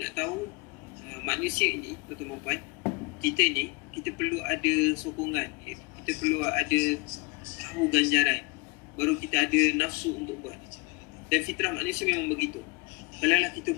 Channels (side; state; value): right; quieter; 28.1 dB